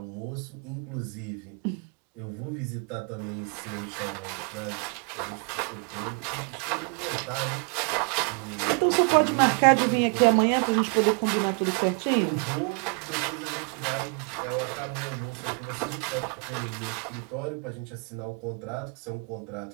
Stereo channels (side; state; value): left; quieter; 34.5 dB